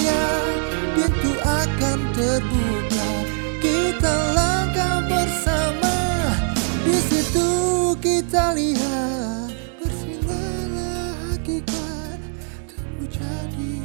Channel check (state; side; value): silent; left; 64 dB below the other